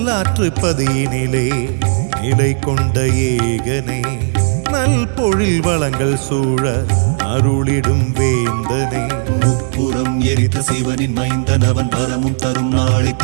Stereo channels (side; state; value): left; silent; digital silence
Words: பதியினிலே நிலை கொண்ட ஏகனே, நல் பொழில் வளங்கள் சூழ அருளிடும் வேந்தனே. முப்புறம் எரித்த சிவனின் மைந்தன் அவன் வரமும் தரும் நாளை